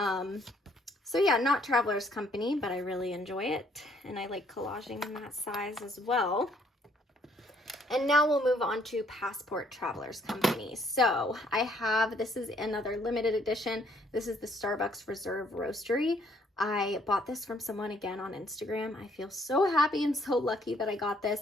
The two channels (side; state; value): both; normal; correlation 0.66